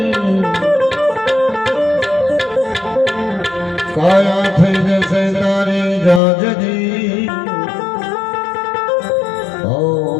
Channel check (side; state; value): right; drops out; at 6.2 s